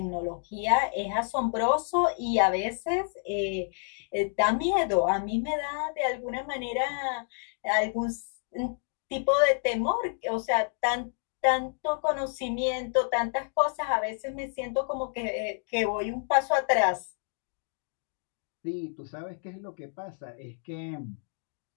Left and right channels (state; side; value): silent; right; 58 dB below the other